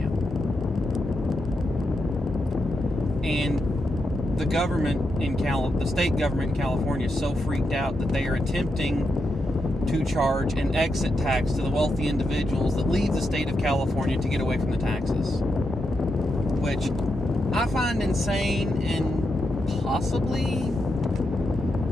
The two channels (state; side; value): normal; both; correlation 0.85